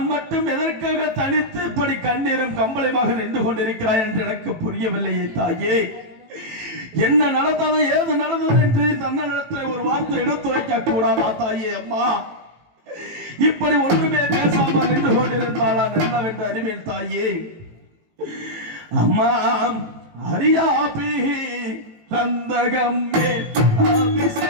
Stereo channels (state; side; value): late; left; 18 ms